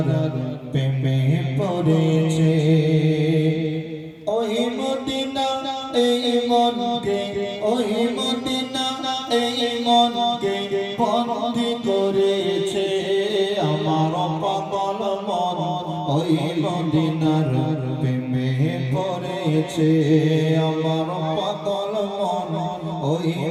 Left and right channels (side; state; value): both; identical; correlation 1.00